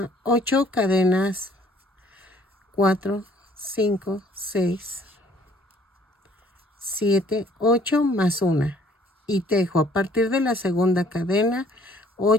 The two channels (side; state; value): both; normal; correlation 0.58